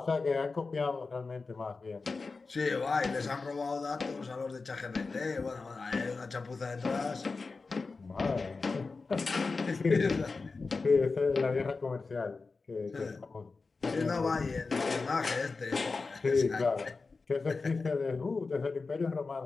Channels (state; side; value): quieter; right; 4.1 dB